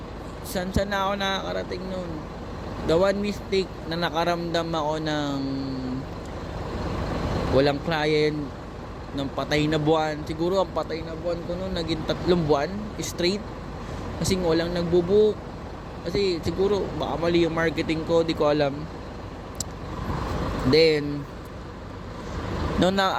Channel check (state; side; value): identical; both; correlation 1.00